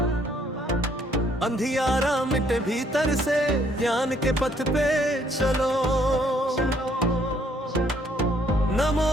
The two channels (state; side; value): normal; both; correlation 0.66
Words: अंधियारा मिटे भीतर से, ज्ञान के पथ पे चलो। नमो